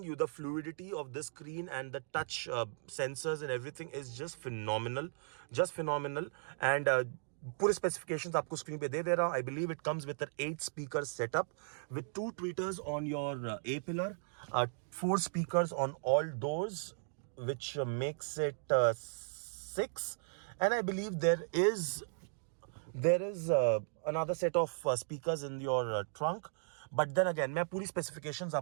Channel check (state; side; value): silent; left; digital silence